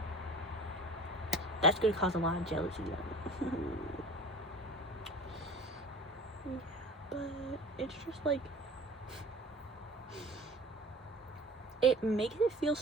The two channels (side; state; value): both; normal; correlation 0.41